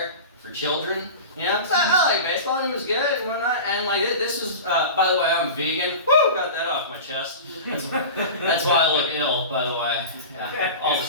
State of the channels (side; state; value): both; inverted; correlation -0.32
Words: for children. You know, 'cause I like baseball and it was good and whatnot. And like this was, by the way, I'm vegan. Woo, got that off my chest. That's why I look ill, by the way. Yeah, all the